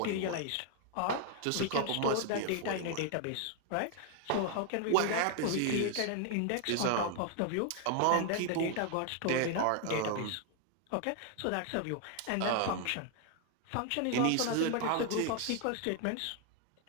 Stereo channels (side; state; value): both; different; correlation 0.00